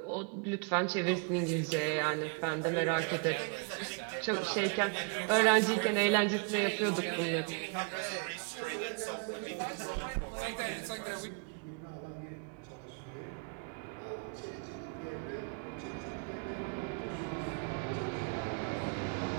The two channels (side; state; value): left; quieter; 36.2 dB